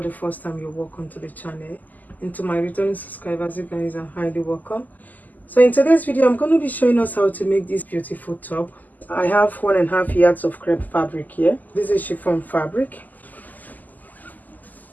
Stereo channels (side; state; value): right; late; 0.082 ms